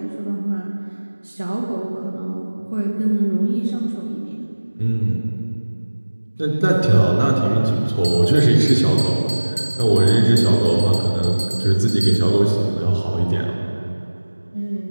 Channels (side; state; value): both; inverted; correlation -1.00